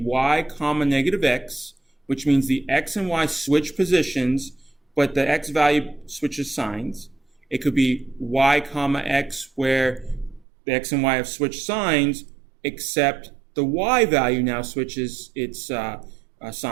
comma negative x, which means the x and y switch positions, but the x value switches signs. It could be y comma x, where the x and y have switched signs, except the y value now switches its sign.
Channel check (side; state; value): left; drops out; at 10.5 s